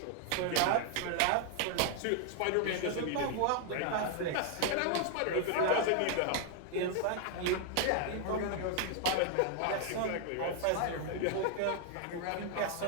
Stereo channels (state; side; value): different; both; correlation 0.00